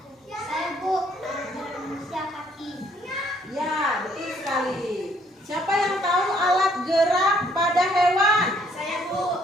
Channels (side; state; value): both; normal; correlation 0.65